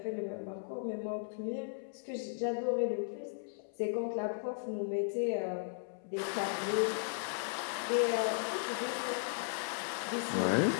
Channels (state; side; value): silent; right; 54 dB below the other